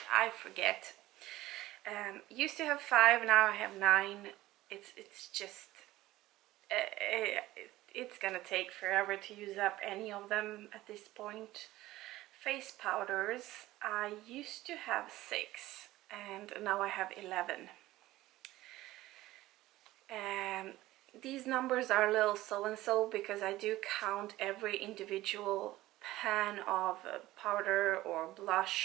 forget. Used to have 5, now I have 9. It's just it's gonna take forever to use up any of them at this point. Face powders, I used to have 6 and now I have 11. These numbers are a little so-and-so because I do count every individual pan of powder or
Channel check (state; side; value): quieter; left; 16.7 dB